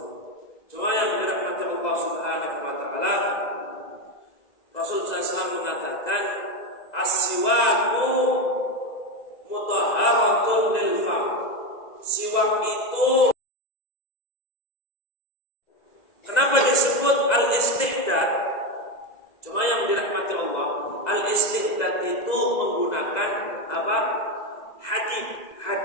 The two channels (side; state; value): right; late; 2.0 ms